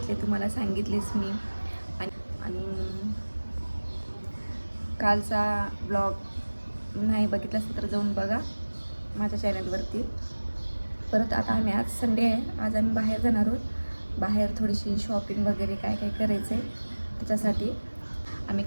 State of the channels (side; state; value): both; inverted; correlation -1.00